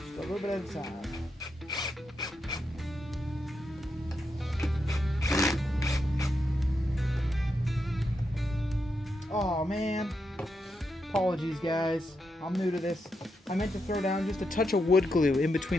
a little bit at a time. Oh man, apologies guys, I'm new to this. I meant to throw down just a touch of wood glue in between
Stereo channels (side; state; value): both; normal; correlation 0.84